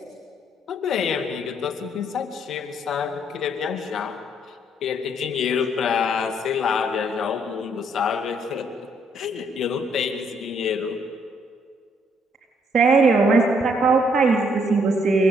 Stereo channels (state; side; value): normal; both; correlation 0.69